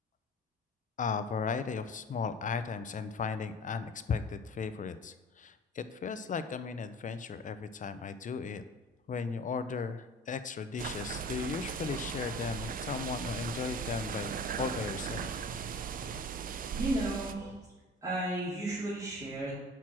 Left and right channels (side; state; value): both; normal; correlation 0.41